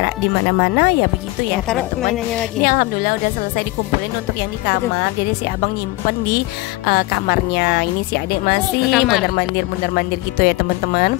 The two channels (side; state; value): right; quieter; 20.4 dB